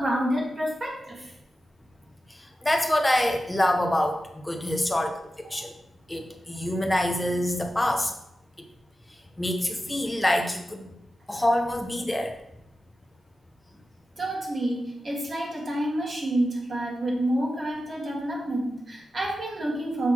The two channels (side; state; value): both; normal; correlation 0.92